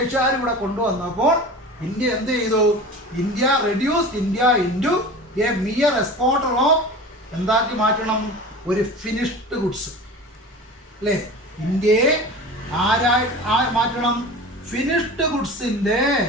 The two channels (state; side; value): normal; both; correlation 0.35